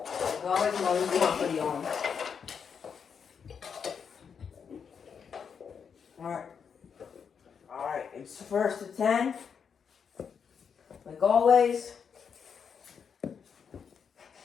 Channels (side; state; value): right; quieter; 6.7 dB